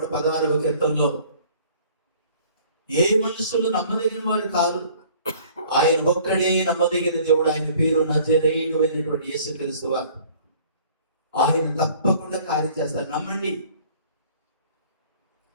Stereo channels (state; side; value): inverted; both; correlation -0.53